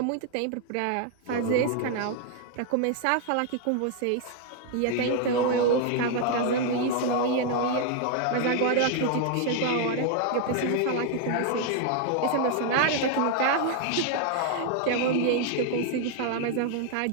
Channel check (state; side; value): different; both; correlation 0.00